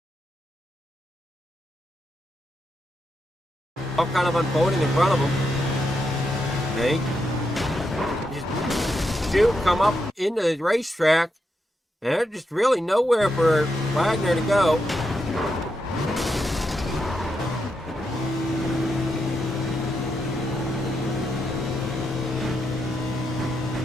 All kind of unfolding in front of him. Okay. Just shoot, come up into the racetrack, and there's just really nowhere for Wagoner to go.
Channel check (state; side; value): normal; both; correlation 0.84